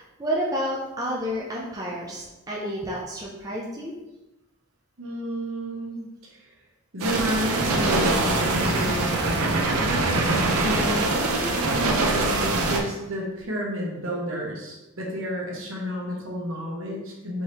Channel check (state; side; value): normal; both; correlation 0.27